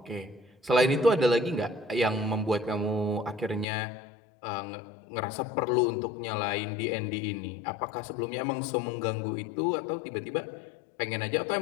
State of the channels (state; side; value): drops out; right; at 3.7 s